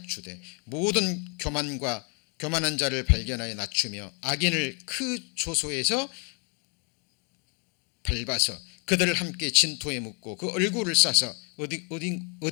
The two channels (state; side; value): quieter; right; 35.4 dB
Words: 모든 교만한 자를 발견하여 낮추며 악인을 그 조소에서 밟아서 그들을 함께 진토에 묻고 그 얼굴을 싸서